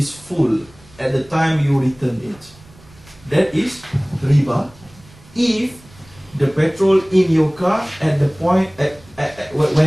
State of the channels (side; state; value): right; noise; rumble, 25 dB below the sound